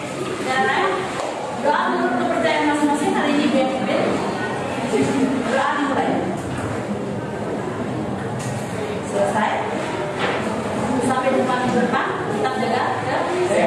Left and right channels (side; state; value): both; identical; correlation 1.00